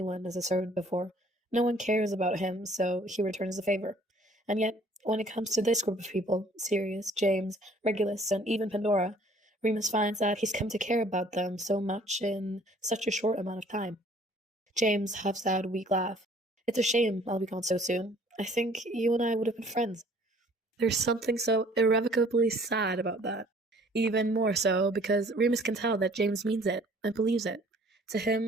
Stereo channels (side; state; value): both; normal; correlation 0.56